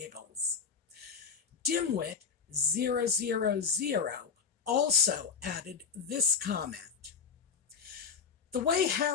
Dimwit000 also added this comment. The way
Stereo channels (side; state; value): right; quieter; 6.0 dB